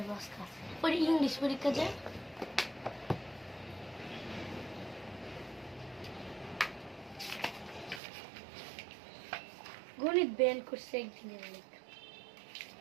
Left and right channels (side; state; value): left; drops out; at 8.0 s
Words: বসকা পরে ইংলিশ পরীক্ষা যায়। গণিত ব্যান করছে একদিনের লেখা।